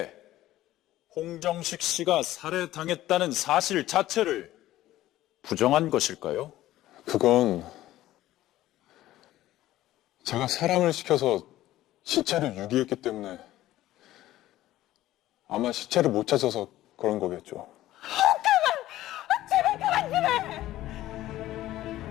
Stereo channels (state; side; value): quieter; right; 14.9 dB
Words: 홍정식 씨가 살해당했다는 사실 자체를 부정한 것일까요? 그건 제가 사람을 시켜서 시체를 유기했기 때문에 아마 시체를 못 찾아서 그런 거겠죠. 제발 그만 좀 해!